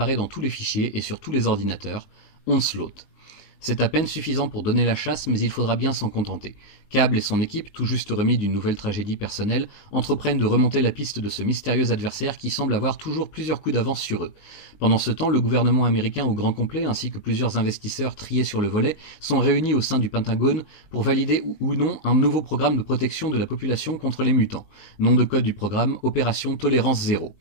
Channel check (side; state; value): right; late; 19 ms